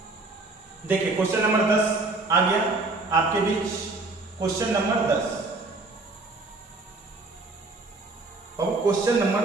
देखिए, क्वेश्चन नंबर 10 आ गया आपके बीच। क्वेश्चन नंबर 10, अब क्वेश्चन नंबर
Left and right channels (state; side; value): quieter; left; 3.4 dB